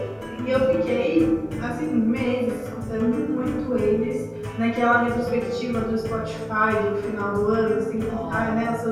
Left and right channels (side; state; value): both; identical; correlation 1.00